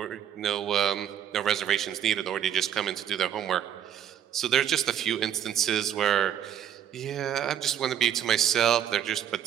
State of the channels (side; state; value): left; quieter; 9.8 dB